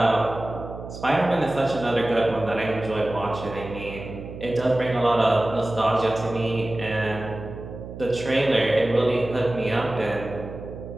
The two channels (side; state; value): right; noise; hum, 11 dB below the sound